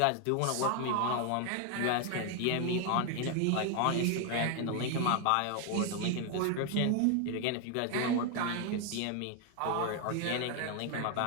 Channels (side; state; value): both; different; correlation 0.01